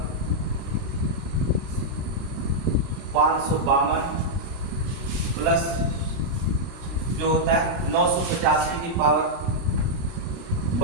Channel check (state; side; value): late; left; 30 ms